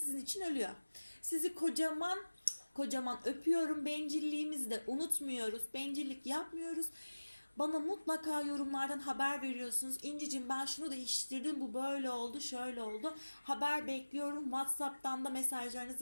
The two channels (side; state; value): both; inverted; correlation -1.00